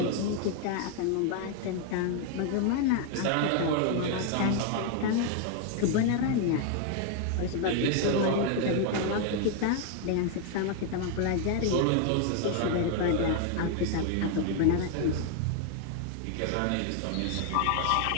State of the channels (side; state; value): both; different; correlation 0.00